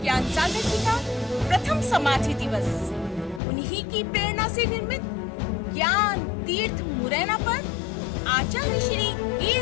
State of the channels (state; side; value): drops out; right; at 3.4 s